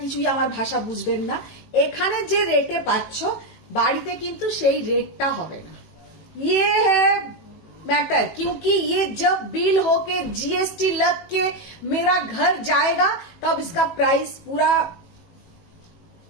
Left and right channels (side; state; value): right; late; 18 ms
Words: আমার ভাষা বুঝবেন না। এখানে যে রেটে পাচ্ছ বাড়িতে কিন্তু সেই রেটটা হবে না। ये है मैटर, क्योंकि ये जब बिल होके जीएसटी लग के मेरा घर जाएगा तब इसका प्राइस पूरा।